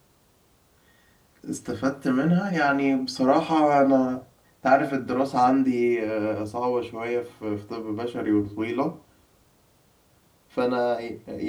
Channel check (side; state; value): both; identical; correlation 1.00